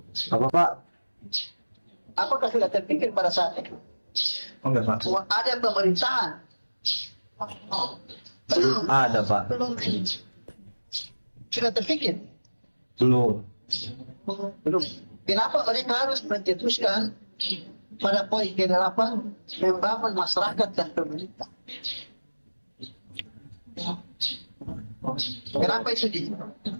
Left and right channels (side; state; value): both; inverted; correlation -1.00